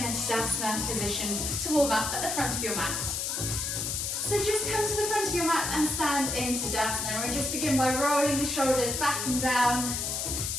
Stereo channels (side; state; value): left; noise; hiss, 1 dB below the sound